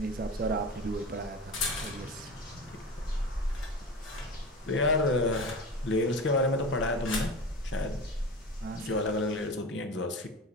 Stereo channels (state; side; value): normal; both; correlation 0.30